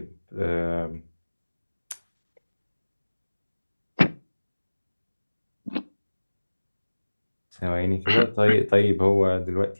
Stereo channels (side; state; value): both; inverted; correlation -1.00